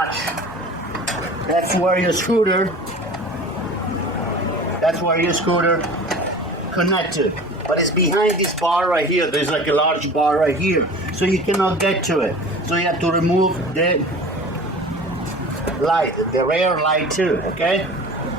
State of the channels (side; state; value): both; normal; correlation 0.39